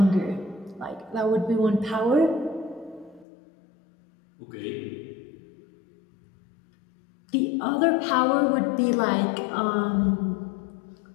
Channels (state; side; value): drops out; right; at 3.2 s